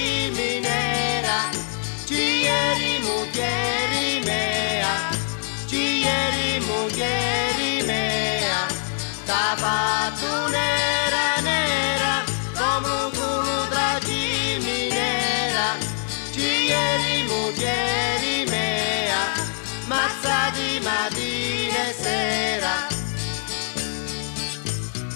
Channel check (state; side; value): silent; right; 60 dB below the other